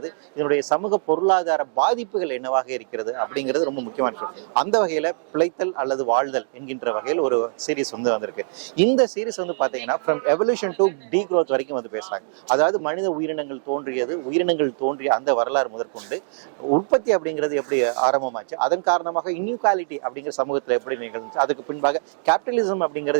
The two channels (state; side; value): silent; left; digital silence